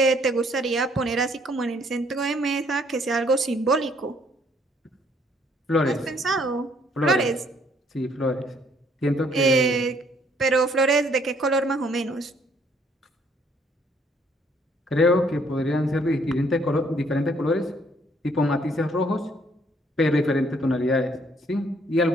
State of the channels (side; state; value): both; normal; correlation 0.65